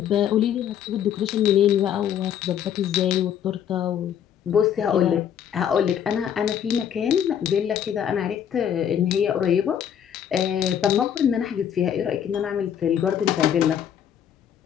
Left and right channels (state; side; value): quieter; right; 9.2 dB